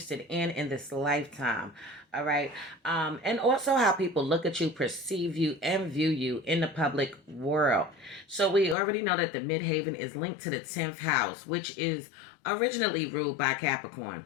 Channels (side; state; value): right; drops out; at 8.8 s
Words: in this lifetime. All right. And also how people look at you, perceive you, and view you in the public world. So we already know that the Midheaven is linked to the 10th house, which is originally ruled by Capricorn.